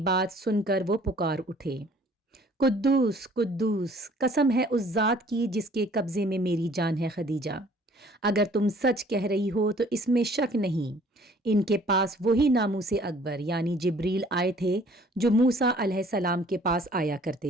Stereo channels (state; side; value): normal; both; correlation 0.56